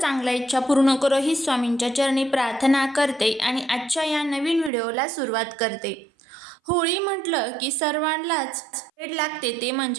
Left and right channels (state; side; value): drops out; left; at 4.7 s